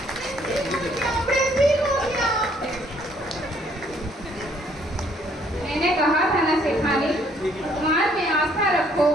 मैंने कहा था ना सेठानी, भगवान में आस्था रखो,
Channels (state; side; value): normal; both; correlation 0.65